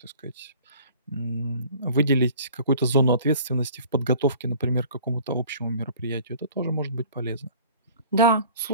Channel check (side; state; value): both; inverted; correlation -0.48